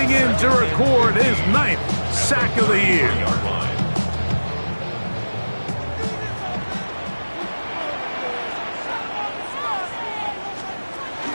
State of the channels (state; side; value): inverted; both; correlation -1.00